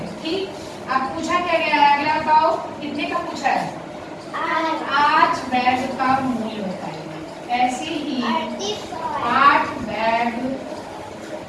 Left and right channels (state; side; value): identical; both; correlation 1.00